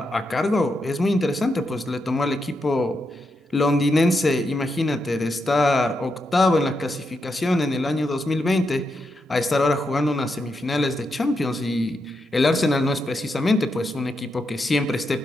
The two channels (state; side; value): normal; both; correlation 0.84